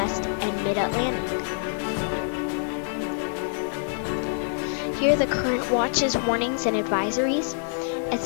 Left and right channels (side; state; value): right; silent; digital silence